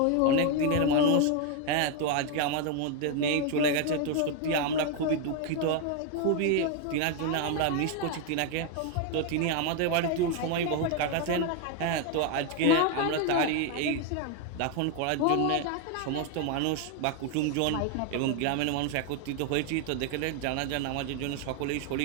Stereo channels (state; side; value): different; both; correlation 0.01